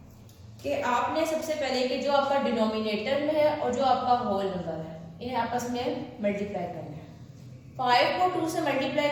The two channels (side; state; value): both; identical; correlation 1.00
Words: कि आपने सबसे पहले कि जो आपका डिनोमिनेटर में है और जो आपका होल नंबर है इन्हें आपस में मल्टीप्लाई करना है. 5 को 2 से मल्टीप्लाई